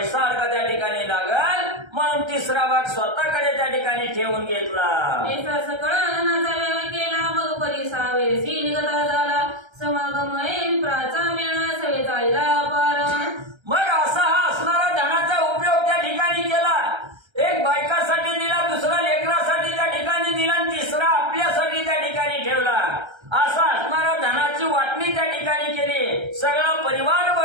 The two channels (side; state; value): left; late; 1.3 ms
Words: अडका त्या ठिकाणी लागल म्हणून तिसरा भाग स्वतःकडे त्या ठिकाणी ठेवून घेतला. ऐसा सकळ धनाचा व्यय केला, मग परिसावे सी निगता झाला, समागम विप्राचा मेळा सवे चालला पार. मग असा हा असणारा धनाचा उपयोग त्या ठिकाणी केला. एक बायकासाठी दिला, दुसरा लेकरासाठी त्या ठिकाणी दिला आणि तिसरा आपल्यासाठी त्या ठिकाणी ठेवला. असा असणारा धनाची वाटणी त्या ठिकाणी केली. सगळा परिवार